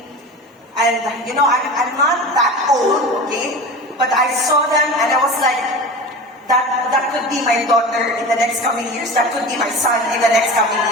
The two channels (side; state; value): both; normal; correlation 0.32